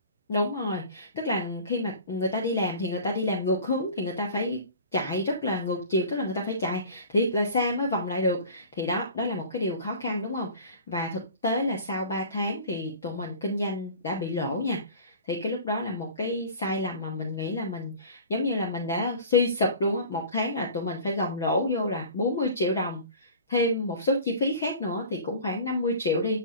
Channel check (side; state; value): both; inverted; correlation -0.40